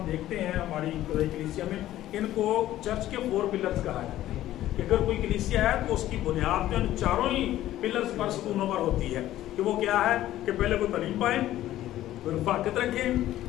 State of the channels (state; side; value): quieter; right; 13.9 dB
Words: देखते हैं हमारी कलीसिया में, इनको चर्च के 4 पिलर्स कहा जाता है कि अगर कोई कलीसिया है तो उसकी बुनियाद तो इन चारों ही पिलर्स पर, सतूनों पर होती है कि वो क्या है कि पहले वो तालीम पाए, रफाकत रखें,